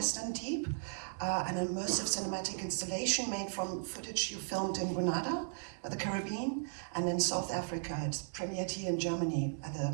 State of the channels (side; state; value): left; silent; digital silence